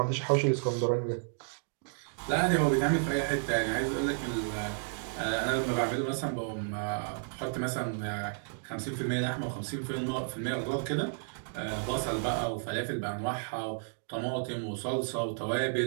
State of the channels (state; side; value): silent; left; digital silence